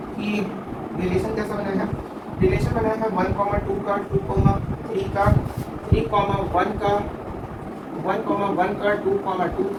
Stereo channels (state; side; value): identical; both; correlation 1.00